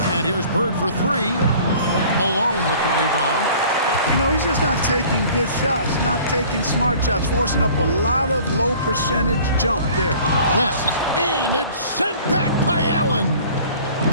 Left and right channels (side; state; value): both; inverted; correlation -0.49